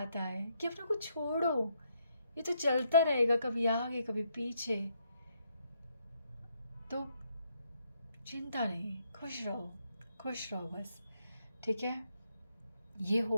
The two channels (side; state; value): both; inverted; correlation -0.75